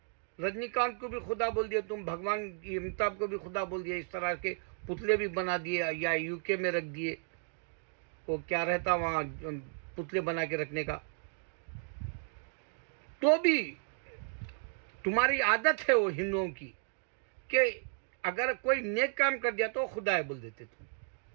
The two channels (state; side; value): silent; left; 55 dB below the other